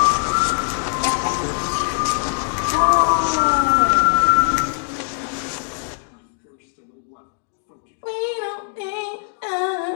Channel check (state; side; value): silent; right; 65 dB below the other